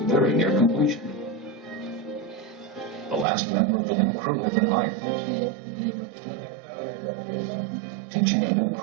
near completion. The last member of the new crew had been hired. Teaching a new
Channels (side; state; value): left; drops out; at 3.2 s